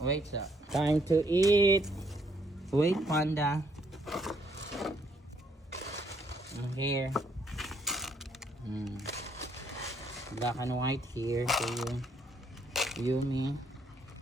sir. Time to eat. Wait Panda. Here. Black and white here for you. Yumi.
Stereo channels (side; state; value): both; normal; correlation 0.70